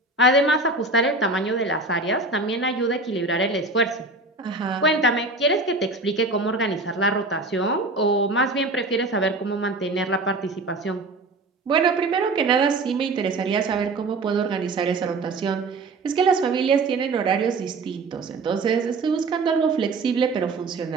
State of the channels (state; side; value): quieter; left; 3.3 dB